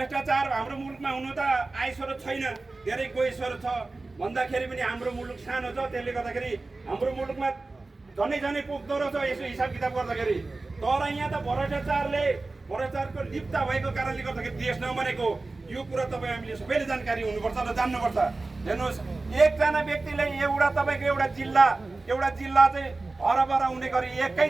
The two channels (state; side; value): quieter; left; 3.4 dB